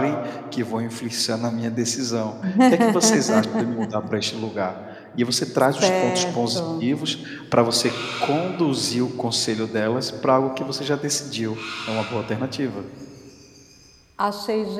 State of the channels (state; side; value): identical; both; correlation 1.00